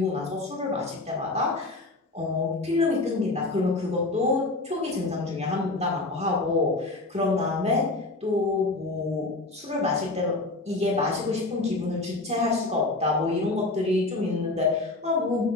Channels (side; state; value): right; quieter; 3.1 dB